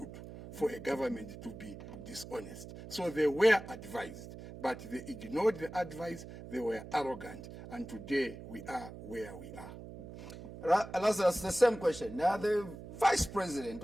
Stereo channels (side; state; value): right; noise; hum, 13 dB below the sound